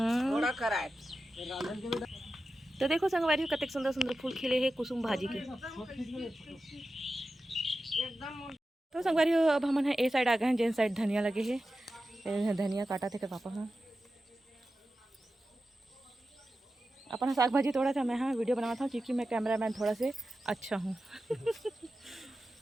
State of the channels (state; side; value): normal; both; correlation 0.92